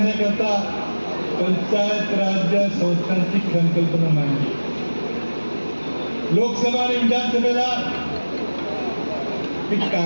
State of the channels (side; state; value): both; inverted; correlation -1.00